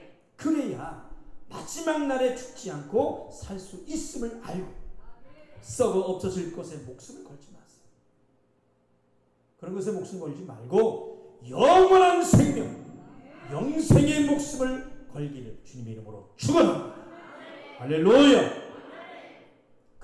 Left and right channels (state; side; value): identical; both; correlation 1.00